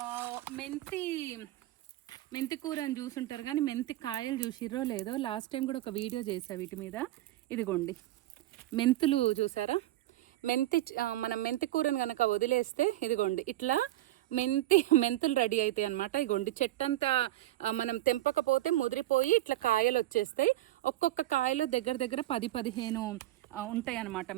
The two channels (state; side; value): quieter; left; 15.3 dB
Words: మెంతి కూర అని చూసుంటారు కానీ మెంతి కాయలు చూసిర్రో లేదో. లాస్ట్ టైం కూడా ఒక వీడియో చేసా వీటి మీద. ఇదిగోండి మెంతులు చూసారా, మనం మెంతి కూరని కనుక వదిలేస్తే ఇదిగోండి ఇట్లా మెంతులు రెడీ అవుతాయి అనమాట. ఇగోండి చెట్టంతా మనం తెంపకపోతే ముదిరిపోయి ఇట్లా కాయలు వచ్చేస్తాయి. ఒక్కొక్క కాయలో దగ్గర 10-15 ఉంటాయి అన్నమాట